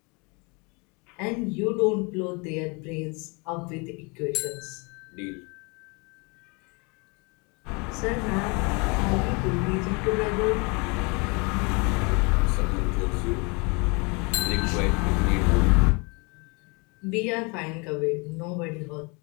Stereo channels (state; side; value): quieter; right; 30.2 dB